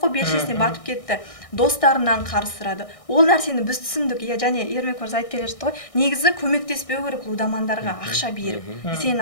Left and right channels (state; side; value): late; right; 1.6 ms